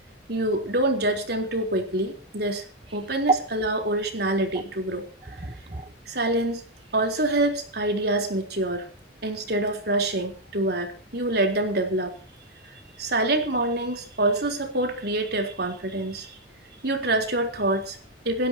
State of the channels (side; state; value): both; normal; correlation -0.02